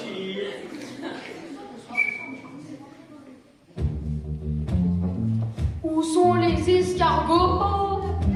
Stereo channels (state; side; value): identical; both; correlation 1.00